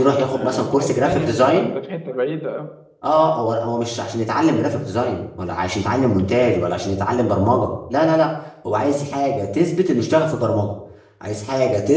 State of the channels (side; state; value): both; identical; correlation 1.00